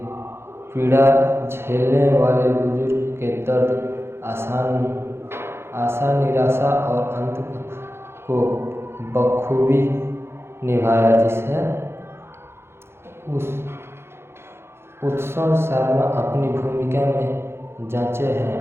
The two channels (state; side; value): late; left; 0.12 ms